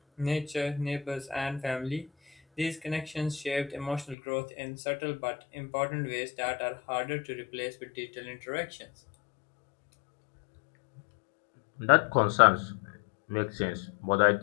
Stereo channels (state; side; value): drops out; right; at 4.2 s